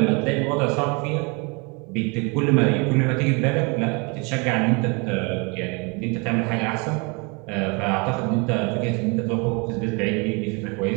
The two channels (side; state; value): left; quieter; 30.8 dB